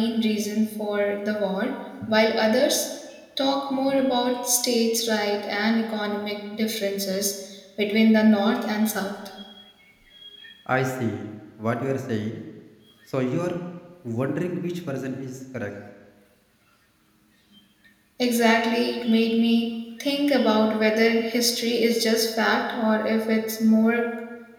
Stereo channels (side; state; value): both; identical; correlation 1.00